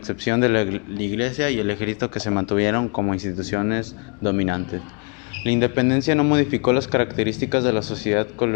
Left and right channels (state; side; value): quieter; right; 36.7 dB